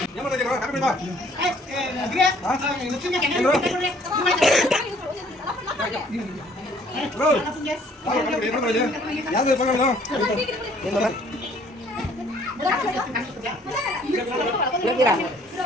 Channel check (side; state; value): both; normal; correlation 0.60